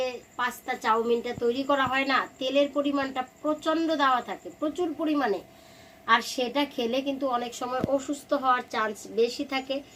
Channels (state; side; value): identical; both; correlation 1.00